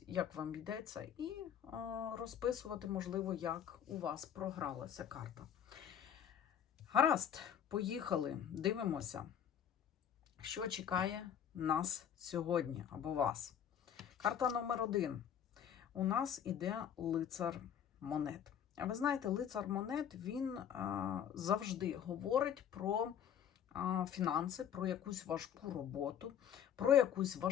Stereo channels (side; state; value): right; quieter; 8.9 dB